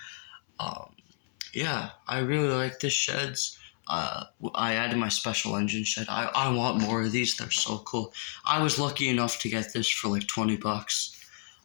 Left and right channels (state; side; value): silent; right; 58 dB below the other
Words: Yeah, I really like this sheds. I added my special engine shed. I want more of these. They're so cool. I was lucky enough to get this for like $20.